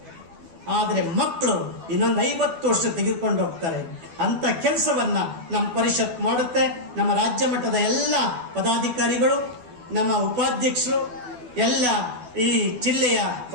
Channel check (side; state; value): left; late; 12 ms